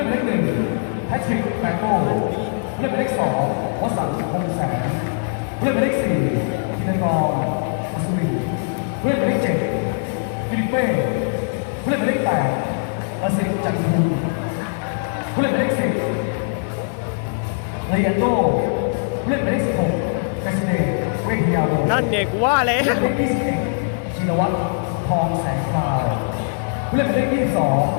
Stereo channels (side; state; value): right; silent; digital silence